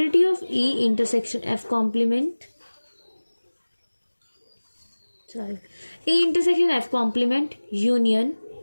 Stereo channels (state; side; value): inverted; both; correlation -1.00